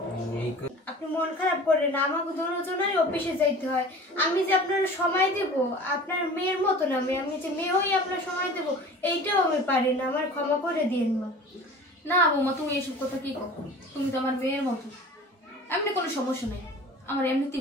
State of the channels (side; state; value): both; normal; correlation 0.41